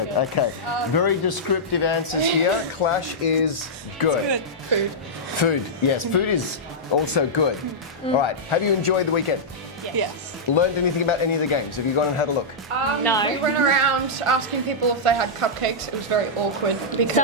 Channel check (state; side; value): normal; both; correlation -0.11